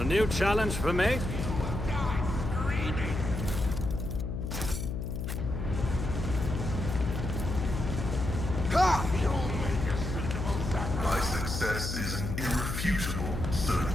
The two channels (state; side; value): noise; left; hum, 4 dB below the sound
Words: new challenge for me? My success is an irrefutable